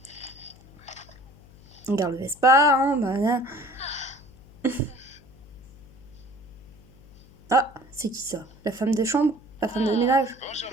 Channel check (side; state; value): left; noise; hum, 23 dB below the sound